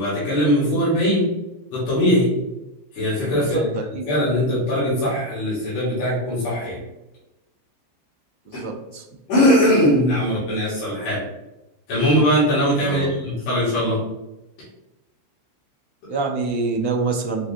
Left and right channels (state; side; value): late; right; 16 ms